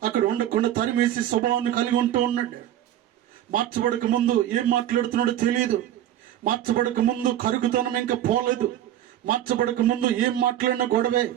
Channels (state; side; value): quieter; left; 12.0 dB